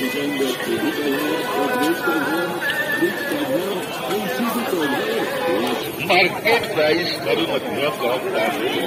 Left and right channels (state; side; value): identical; both; correlation 1.00